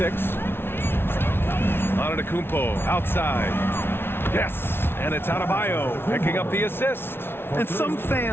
Antetokounmpo outside. Yes, and it's Adebayo picking up the assist. And some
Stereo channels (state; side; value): late; right; 0.11 ms